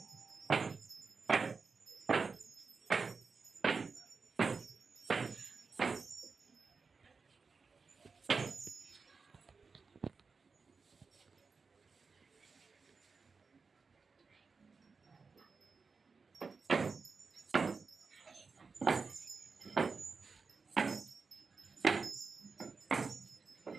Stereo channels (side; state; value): left; quieter; 4.7 dB